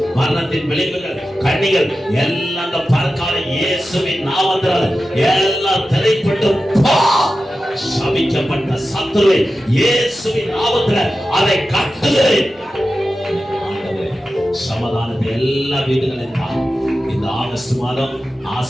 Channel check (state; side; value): normal; both; correlation 0.93